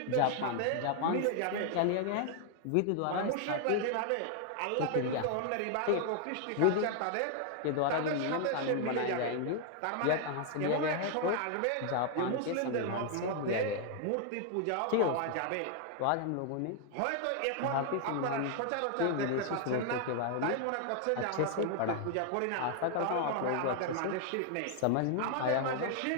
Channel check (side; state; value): both; different; correlation 0.00